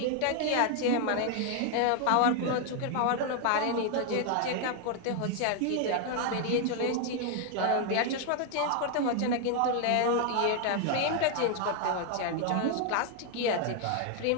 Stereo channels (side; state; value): both; different; correlation 0.00